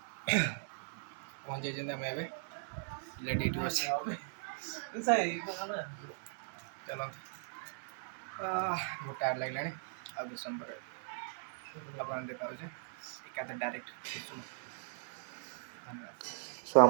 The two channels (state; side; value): silent; left; digital silence